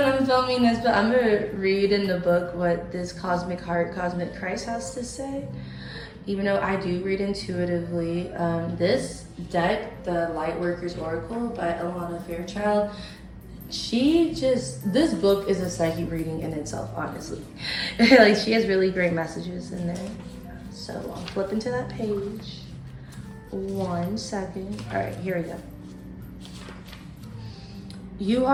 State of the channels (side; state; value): both; identical; correlation 1.00